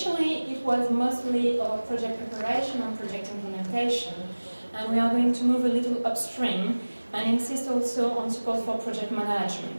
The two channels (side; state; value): both; inverted; correlation -1.00